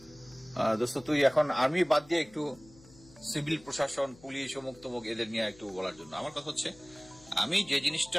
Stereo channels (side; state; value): left; noise; hum, 24 dB below the sound